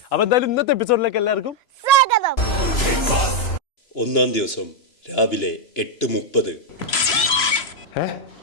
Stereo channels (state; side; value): late; right; 3.0 ms